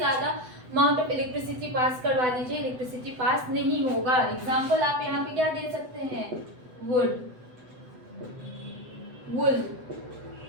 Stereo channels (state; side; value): late; left; 8.0 ms